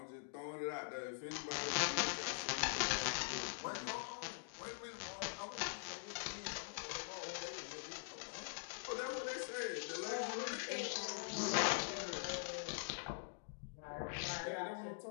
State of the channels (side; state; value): right; silent; digital silence